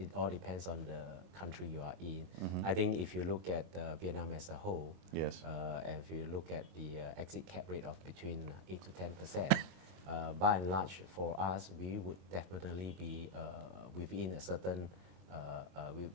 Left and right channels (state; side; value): late; left; 22 ms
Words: all depends on the country you are in. I think if you look at Vietnam as a whole, Yes. and if you look at the exit cap rate of between 8 to 10%, by and large, for us, we would definitely be within a certain,